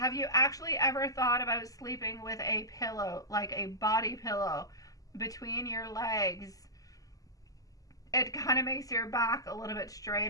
you actually ever thought about sleeping with a pillow, like a body pillow, between your legs? It kind of makes your back a little bit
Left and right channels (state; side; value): late; right; 0.17 ms